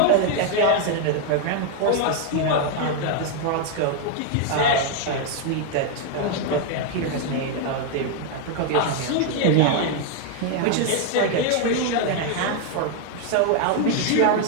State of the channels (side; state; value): both; different; correlation 0.01